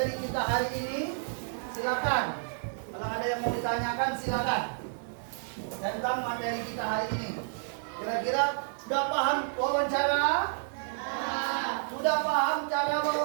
kita hari ini? Silakan. Kalau ada yang mau ditanyakan, silakan. Tentang materi kita hari ini. Kira-kira sudah paham wawancara? Sudah paham cara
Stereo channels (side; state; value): left; silent; digital silence